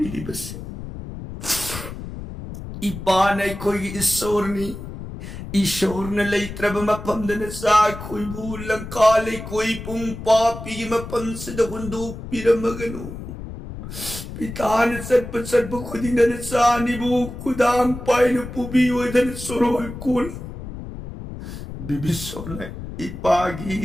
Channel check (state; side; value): noise; left; rumble, 10 dB below the sound